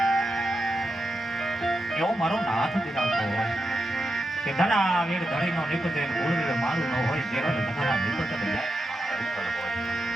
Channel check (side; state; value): both; normal; correlation 0.87